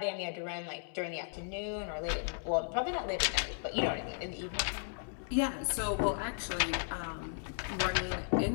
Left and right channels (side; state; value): right; silent; 54 dB below the other